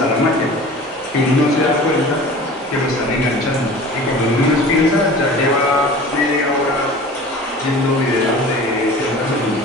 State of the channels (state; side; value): normal; both; correlation 0.40